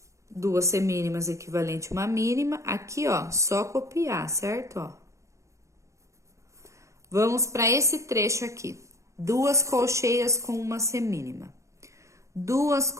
duas semínimas equivalente a uma mínima. Aqui, ó, só copiar, certo? Ó. Vamos para esse trecho aqui. Duas colcheias com uma semínima. Duas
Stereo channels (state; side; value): late; left; 0.15 ms